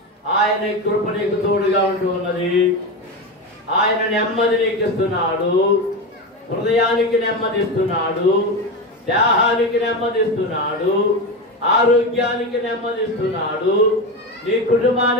ఆయన కృప నీకు తోడుగా ఉంటూ ఉన్నది. ఆయన నెమ్మది నీకు ఇస్తున్నాడు, హృదయానికి నెమ్మదిస్తున్నాడు, దేహానికి నెమ్మదిస్తున్నాడు, ఆరోగ్యానికి నెమ్మదిస్తున్నాడు, నీ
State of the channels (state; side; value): normal; both; correlation 0.18